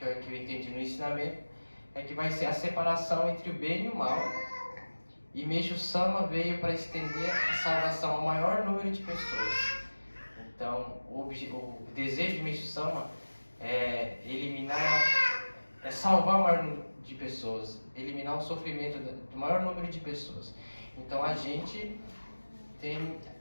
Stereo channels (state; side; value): inverted; both; correlation -1.00